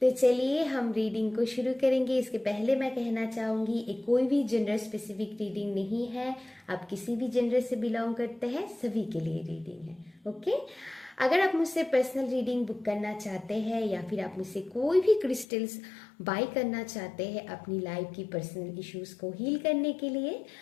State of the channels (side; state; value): right; drops out; at 15.5 s